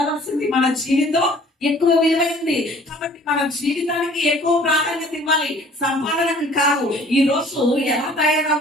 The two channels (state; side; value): normal; both; correlation 0.53